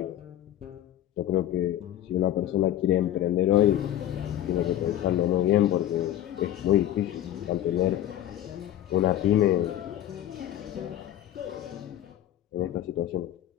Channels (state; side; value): quieter; right; 12.4 dB